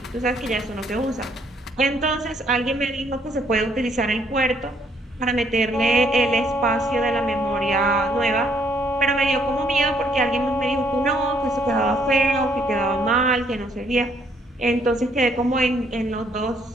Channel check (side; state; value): both; normal; correlation 0.67